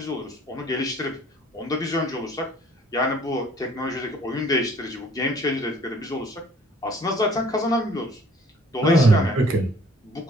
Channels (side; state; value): both; normal; correlation 0.56